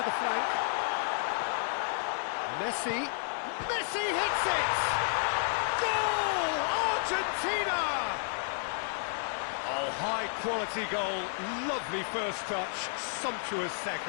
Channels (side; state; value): right; silent; digital silence